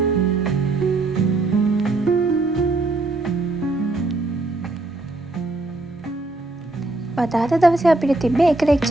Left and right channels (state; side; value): quieter; left; 3.0 dB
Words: අද දවසේ අපිට තිබ්බේ එක